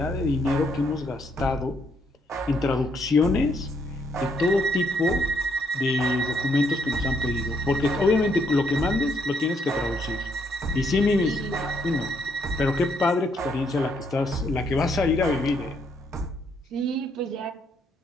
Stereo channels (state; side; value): normal; both; correlation 0.72